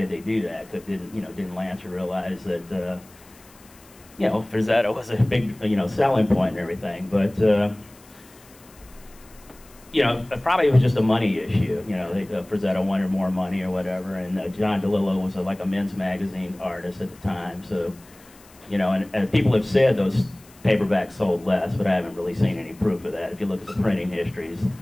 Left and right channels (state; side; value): noise; left; hiss, 25 dB below the sound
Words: they do that? Didn't Lancer realize that, Frazetta was a big, selling point and everything, but, probably it was just a money issue. Frazetta wanted more money or whatever, and John DeLillo was like a men's magazine artist at the time, so. And people have said those paperbacks sold less, but I haven't really seen any proof of that. If you look at the printing histories,